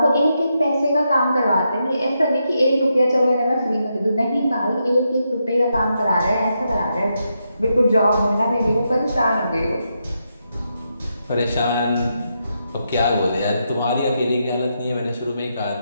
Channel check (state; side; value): inverted; both; correlation -0.83